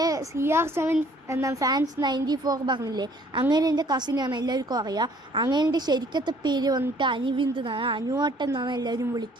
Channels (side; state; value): both; normal; correlation 0.59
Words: CR7 എന്ന ഫാൻസ് 94 പറഞ്ഞില്ലേ, അങ്ങനെ എൻ്റെ കസിനാണ്, എല്ലാവർക്കും അറിയാം. അങ്ങനെ എൻ്റെ ശരിക്കത്തെ പേര് വന്നിട്ട് അനിവിന്ദ് എന്നാണ്, അനുവാട്ടൻ എന്നാണ് എല്ലാവരും